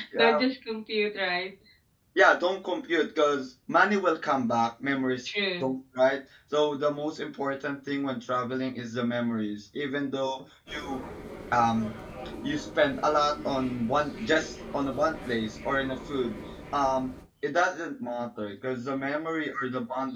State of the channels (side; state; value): both; identical; correlation 1.00